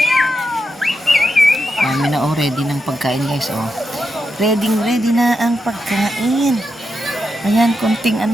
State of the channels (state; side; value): normal; both; correlation 0.86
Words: Dami na, oh. Ready ng pagkain, guys, oh. Ready na ang pagkain. Ayan, konting